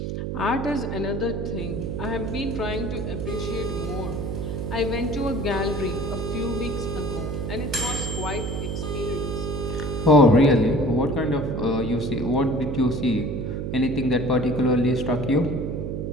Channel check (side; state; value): right; noise; hum, 3 dB below the sound